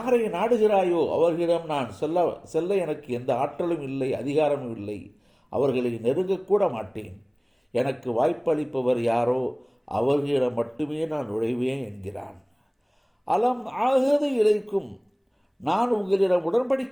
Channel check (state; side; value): identical; both; correlation 1.00